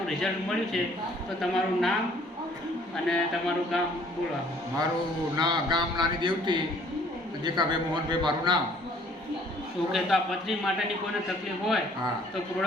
રિઝલ્ટ મળ્યું છે. તો તમારું નામ અને તમારું ગામ બોલો. મારું ગામ નાની દેવતી, દેખાભાઈ મોહનભાઈ મારું નામ. ઓકે, તો આ પથરી માટેની કોઈને તકલીફ હોય હા તો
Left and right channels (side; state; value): both; normal; correlation 0.58